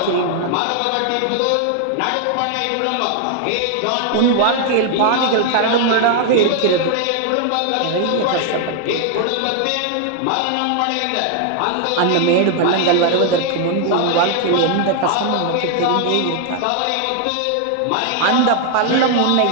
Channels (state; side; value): different; both; correlation 0.00